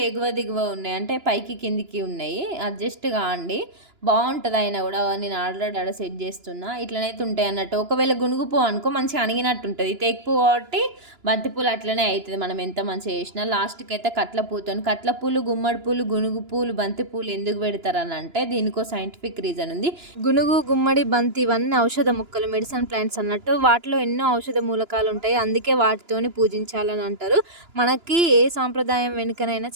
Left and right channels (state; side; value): late; left; 2.9 ms